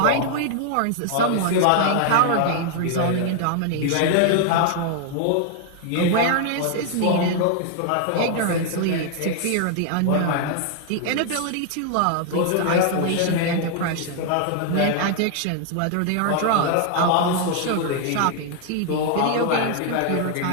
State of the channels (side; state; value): both; different; correlation 0.00